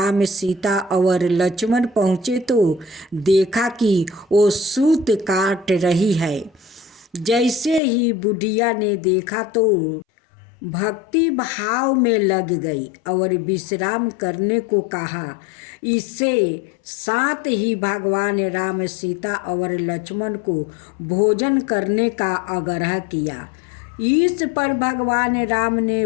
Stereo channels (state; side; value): drops out; right; at 7.8 s